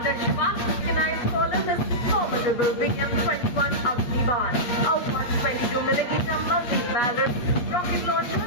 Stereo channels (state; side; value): late; right; 8.3 ms